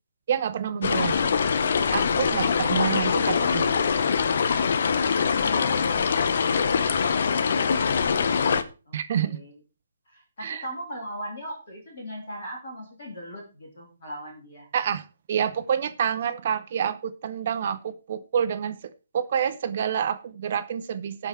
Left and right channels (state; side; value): inverted; both; correlation -0.72